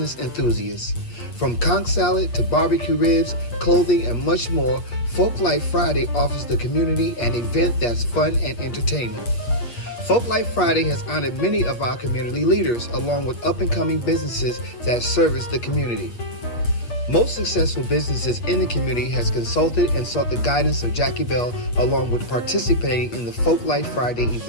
enthusiasts. From conch salad to barbecue ribs, clothing, and much more, Folk Life Friday offers the community an event that's fun and entertaining. Folk Life Friday has honored many of our community leaders, along with up-and-coming businesses that service the community. Most successful businesses in the community has consulted and sought the guidance of Jackie Bell, along with participating in the Folk Life Friday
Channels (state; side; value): late; right; 8.4 ms